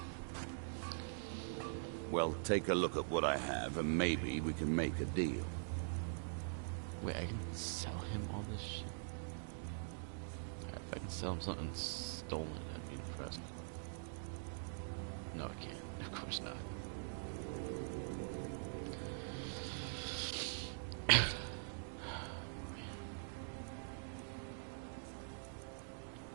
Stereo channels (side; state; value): left; silent; digital silence